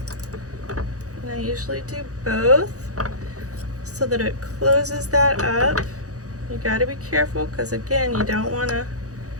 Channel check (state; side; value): late; left; 0.66 ms